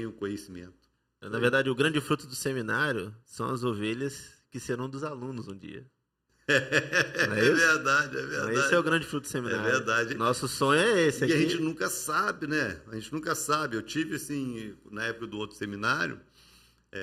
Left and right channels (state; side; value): identical; both; correlation 1.00